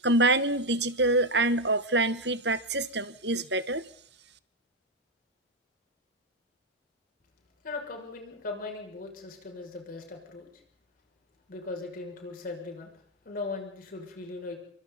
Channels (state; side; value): normal; both; correlation 0.05